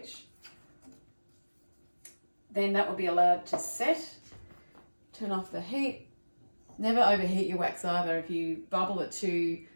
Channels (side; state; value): both; inverted; correlation -1.00